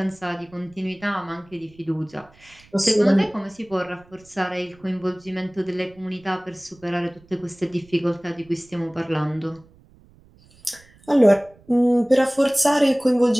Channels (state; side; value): noise; right; rumble, 28 dB below the sound